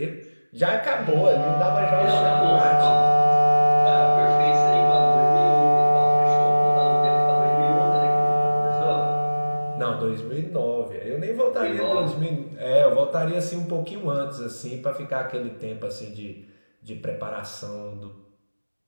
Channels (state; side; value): inverted; both; correlation -1.00